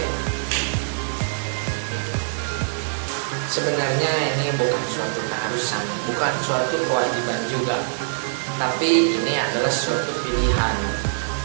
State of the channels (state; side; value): silent; left; 63 dB below the other